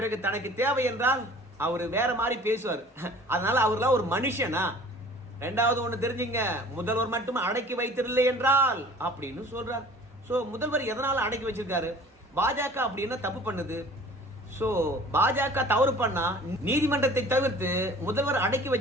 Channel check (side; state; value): both; normal; correlation 0.47